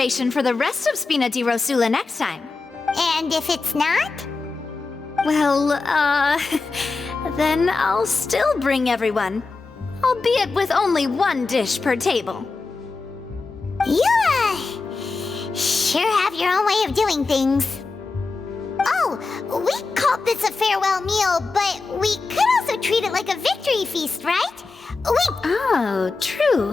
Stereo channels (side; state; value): right; quieter; 4.0 dB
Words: for the rest of Spina di Rosula next time. And if it's not? Well, then I'll still bring everyone. Albeit with only one dish per table. You, sure have your own way of doing things. Oh, we called this a farewell meal, but we could also treat it like a victory feast, right? Oh,